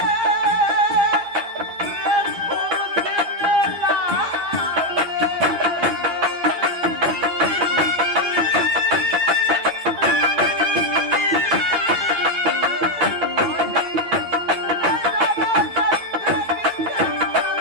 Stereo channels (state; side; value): late; left; 12 ms